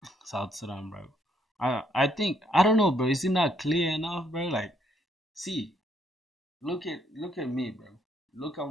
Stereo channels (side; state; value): both; normal; correlation 0.70